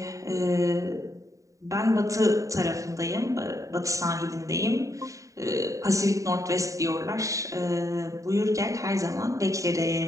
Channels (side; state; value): left; late; 0.16 ms